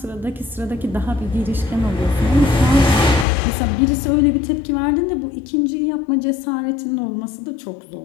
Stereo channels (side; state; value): right; drops out; at 3.2 s